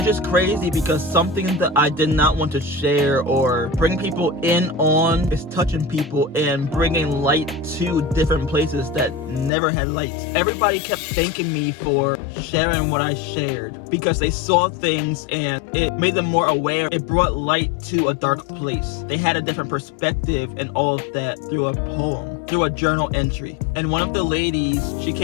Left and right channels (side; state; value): right; drops out; at 9.5 s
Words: just crazy because something that I did not want to share or bring people in on is touching people and bringing light to different places that never had lights. Everybody kept thanking me for sharing what I shared because they saw things and it made them more aware. It brought light to a dark place. They had a different perspective and all of that through a poem, through a journal entry. And one of the ladies, she